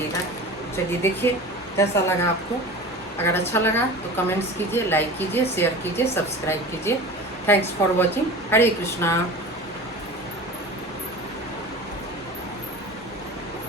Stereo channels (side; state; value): both; normal; correlation 0.34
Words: चलिए देखिए कैसा लगा आपको। अगर अच्छा लगा तो कमेंट्स कीजिए, लाइक कीजिए, शेयर कीजिए, सब्सक्राइब कीजिए। Thanks for watching. Hare Krishna.